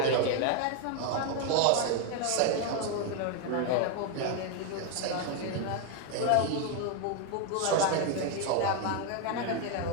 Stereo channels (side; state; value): both; different; correlation 0.01